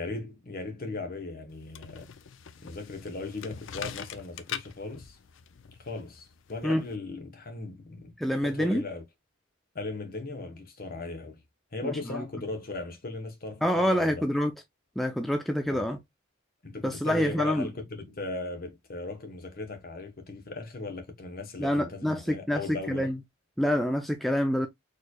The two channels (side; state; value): both; normal; correlation 0.77